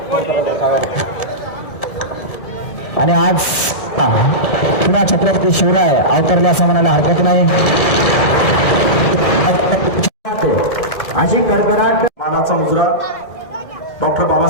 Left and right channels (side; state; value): right; late; 1.8 ms